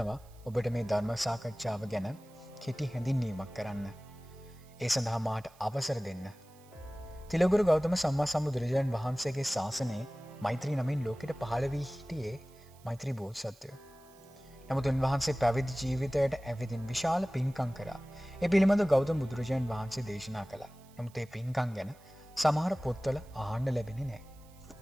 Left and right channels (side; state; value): right; noise; hiss, 27 dB below the sound